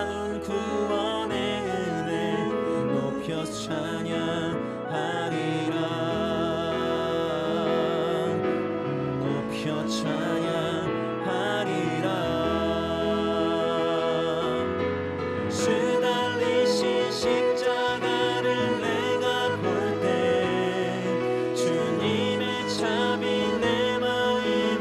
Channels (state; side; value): identical; both; correlation 1.00